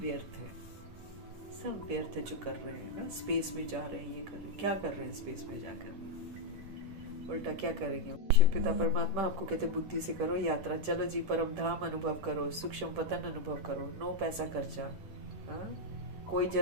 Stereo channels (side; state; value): left; late; 10 ms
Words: है, सब व्यर्थ है जो कर रहे हैं ना। स्पेस में जा रहे हैं, ये कर रहे हैं, क्या कर रहे हैं स्पेस में जाकर, उल्टा क्या करेंगे। शिव पिता परमात्मा आपको कहते बुद्धि से करो यात्रा, चलो जी परम धाम अनुभव करो, सूक्ष्म पतन अनुभव करो, नो पैसा खर्चा। कोई